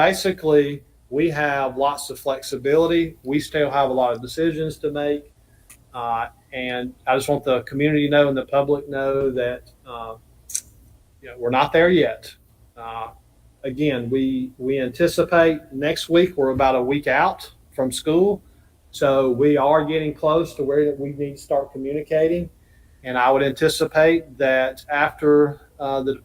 we have lots of flexibility. We still have a lot of decisions to make. And I just want the community to know and the public know that we're not there yet. Again, we anticipate next week we're about a week out from school. So we are getting close to where we need to start communicating. And I would anticipate that after the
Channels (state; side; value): identical; both; correlation 1.00